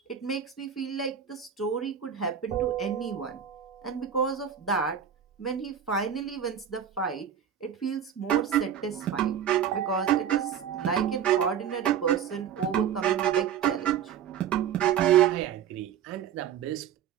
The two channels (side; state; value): left; quieter; 8.7 dB